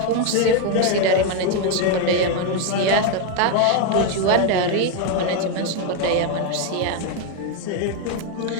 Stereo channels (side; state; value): both; different; correlation 0.01